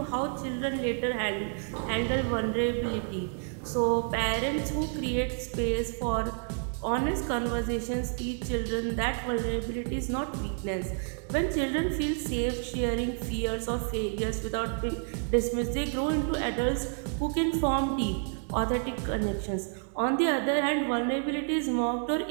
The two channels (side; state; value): left; silent; 57 dB below the other